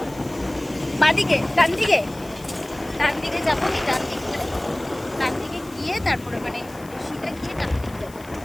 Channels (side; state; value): left; noise; hiss, 22 dB below the sound